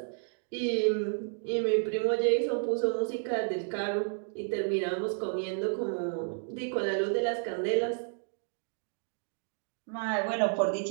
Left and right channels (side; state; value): left; silent; 57 dB below the other